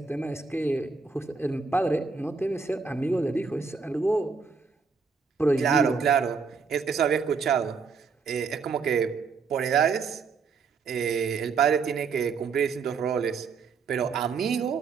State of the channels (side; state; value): left; quieter; 5.2 dB